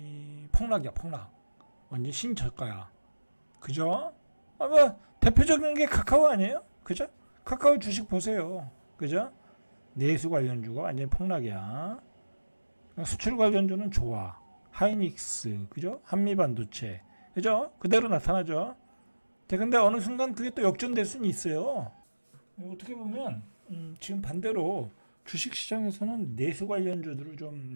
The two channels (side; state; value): both; inverted; correlation -1.00